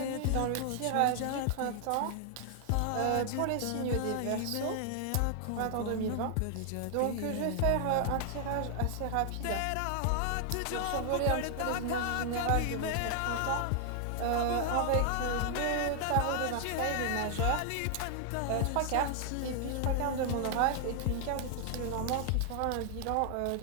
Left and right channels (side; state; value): both; different; correlation 0.00